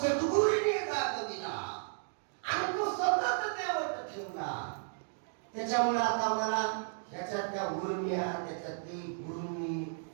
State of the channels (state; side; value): silent; left; digital silence